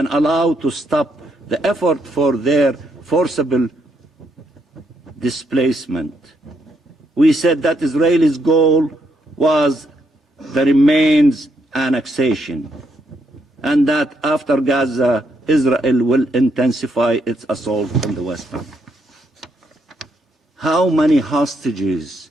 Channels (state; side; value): normal; both; correlation 0.76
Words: allow to stop the effort for their forcible displacement. We said that Israel's goal was the remains annexation, and that after Gaza, Israel will intensify its assault on the West Bank. How many hostages